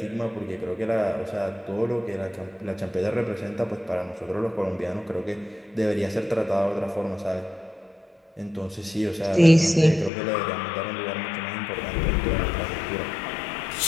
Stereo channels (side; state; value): right; drops out; at 10.1 s